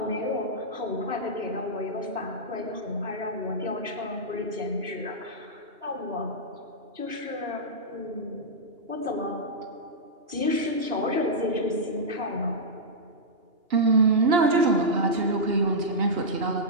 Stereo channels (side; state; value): left; late; 2.8 ms